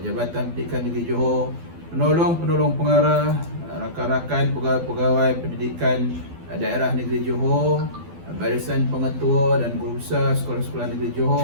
Pendidikan Negeri Johor, Penolong-penolong pengarah, rakan-rakan pegawai-pegawai pendidikan daerah Negeri Johor, barisan pengetua dan guru besar sekolah-sekolah Negeri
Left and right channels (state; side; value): late; left; 12 ms